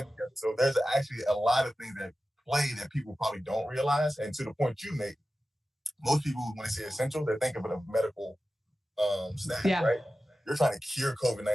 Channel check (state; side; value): normal; both; correlation 0.94